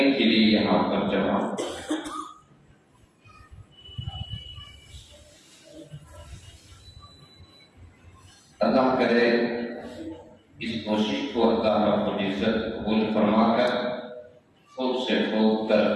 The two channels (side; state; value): both; identical; correlation 1.00